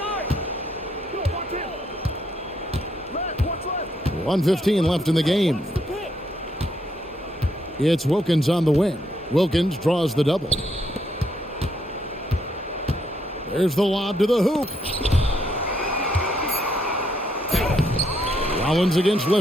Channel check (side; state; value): both; normal; correlation 0.74